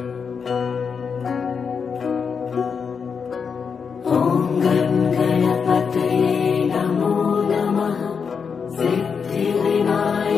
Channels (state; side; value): quieter; right; 6.1 dB